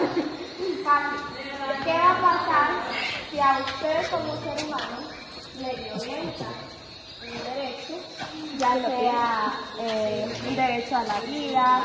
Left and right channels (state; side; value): identical; both; correlation 1.00